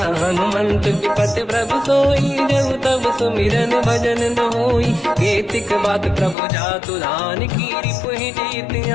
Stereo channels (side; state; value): right; drops out; at 6.4 s